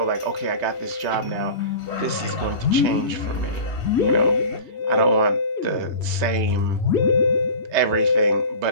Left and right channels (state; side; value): late; left; 3.3 ms